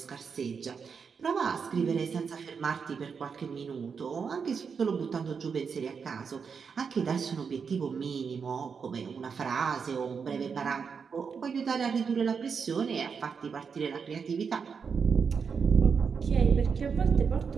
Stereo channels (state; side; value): quieter; left; 6.0 dB